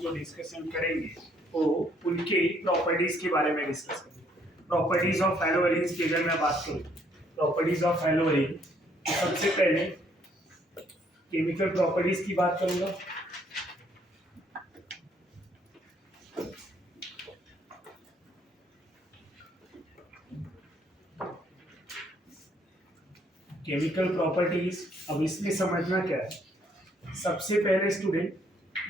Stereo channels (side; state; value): both; normal; correlation 0.67